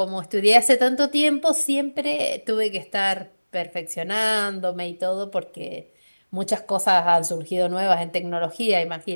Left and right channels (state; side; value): inverted; both; correlation -1.00